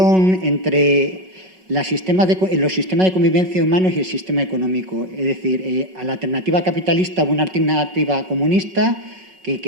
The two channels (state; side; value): late; left; 5.4 ms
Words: entre los sistemas de convivencia humanos y el sistema económico. Es decir, a la alternativa capitalista o una alternativa comunista